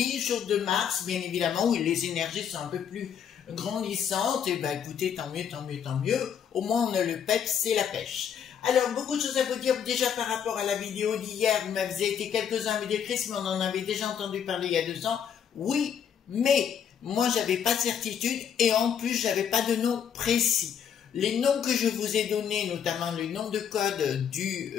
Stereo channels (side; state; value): right; quieter; 8.1 dB